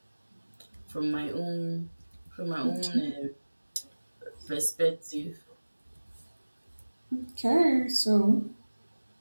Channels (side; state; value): both; inverted; correlation -1.00